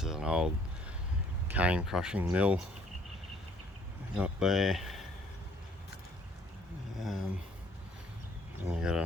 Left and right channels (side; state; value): both; normal; correlation 0.61